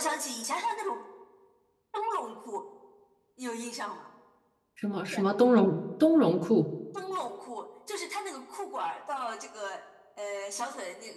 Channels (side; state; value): both; identical; correlation 1.00